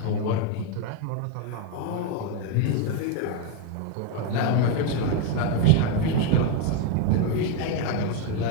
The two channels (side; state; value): both; different; correlation 0.02